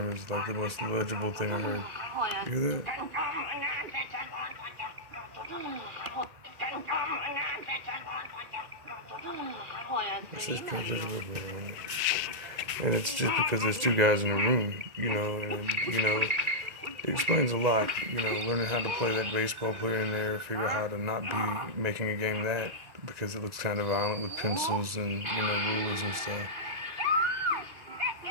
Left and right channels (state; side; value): late; left; 2.0 ms